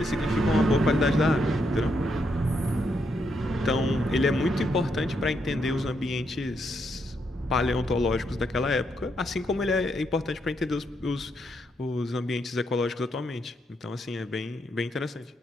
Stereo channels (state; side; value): normal; both; correlation 0.78